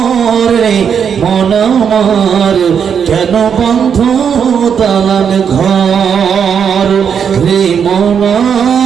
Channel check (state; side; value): quieter; left; 7.4 dB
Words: মন আমার কেন বন্ধ দালান ঘর, রে মন